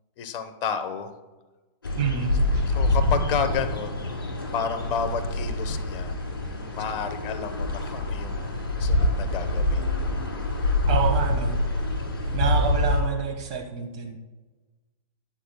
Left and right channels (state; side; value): inverted; both; correlation -0.37